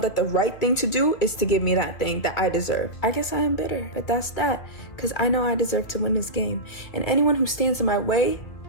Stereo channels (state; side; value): late; right; 2.5 ms